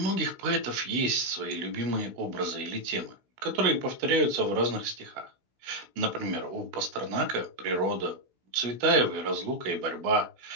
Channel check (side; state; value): left; late; 16 ms